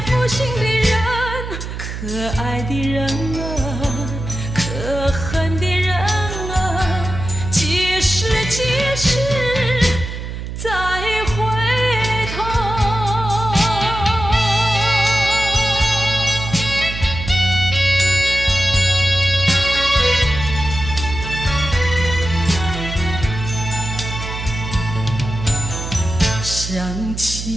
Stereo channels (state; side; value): noise; right; hum, 7 dB below the sound